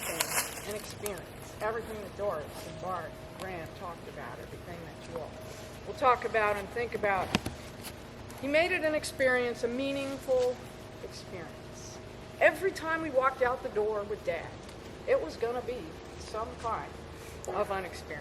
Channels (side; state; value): both; identical; correlation 1.00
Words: an experience. Everything that Doris and Bart and Grant talked about, everything that you all will talk about and think about. He made it an experience, a meaningful experience. Every time we walked out the door with Dad, it was going to be some kind of an